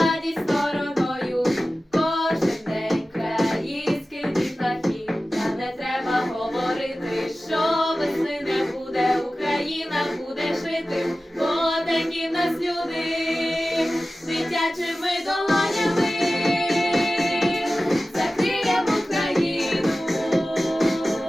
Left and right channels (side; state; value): both; normal; correlation 0.96